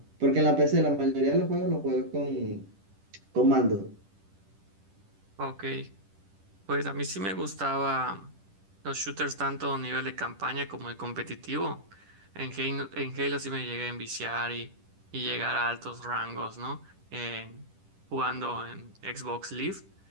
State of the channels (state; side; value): late; left; 10 ms